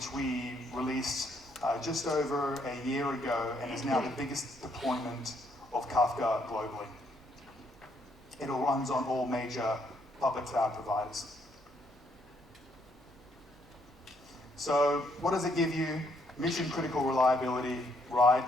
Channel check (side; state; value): both; normal; correlation 0.72